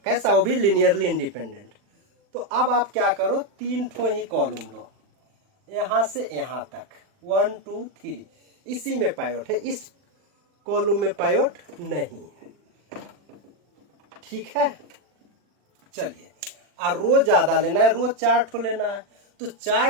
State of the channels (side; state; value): left; late; 39 ms